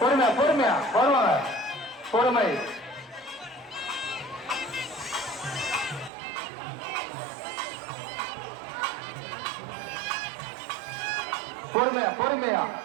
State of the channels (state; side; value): drops out; left; at 6.1 s